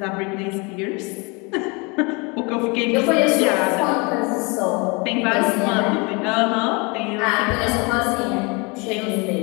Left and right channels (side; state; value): right; quieter; 29.2 dB